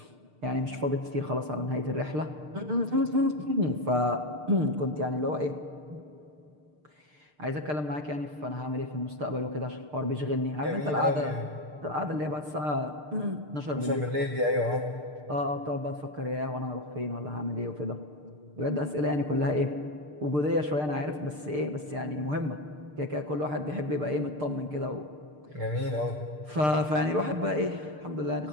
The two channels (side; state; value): left; late; 6.7 ms